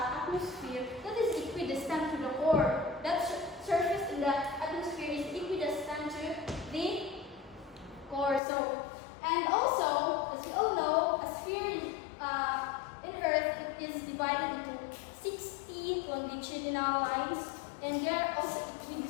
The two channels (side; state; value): right; drops out; at 8.4 s